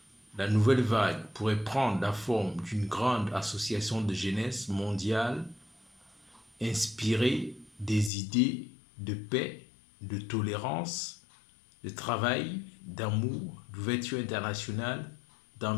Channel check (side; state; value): right; drops out; at 8.1 s